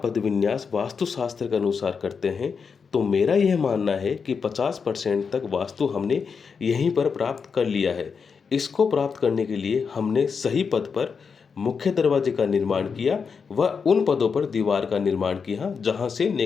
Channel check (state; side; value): quieter; right; 5.8 dB